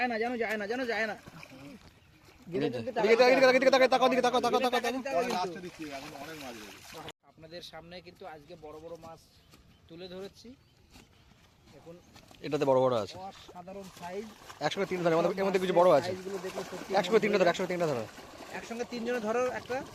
না, জানো যায় না, জানো যায় না। আপনাদের সামনে কিন্তু আজকে বড় বড় মাছ তুলে ধরেছি। এখন এটাতে বড় বড় আছে, অসাধারণ সাইজ। 103 ধরে, এর মধ্যে কিছু বড় আছে। সাইজগুলো দেখলে সত্যি 103 ধরে, 103 ধরে। একসঙ্গে তিনজনে ধরো একটা।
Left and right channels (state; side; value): identical; both; correlation 1.00